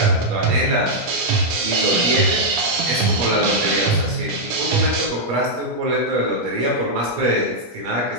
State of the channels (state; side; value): late; left; 17 ms